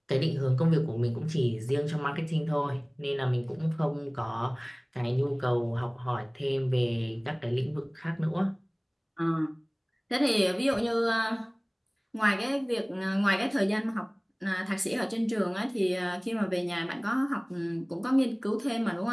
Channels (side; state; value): both; identical; correlation 1.00